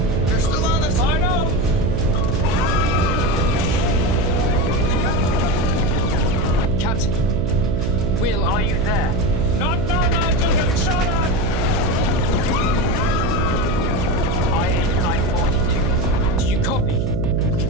They're still on us. I know. Captain! Will, Are you there? Not now, Nigel. Getting shot at. IH-942. do you copy?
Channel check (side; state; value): right; noise; hum, 1 dB below the sound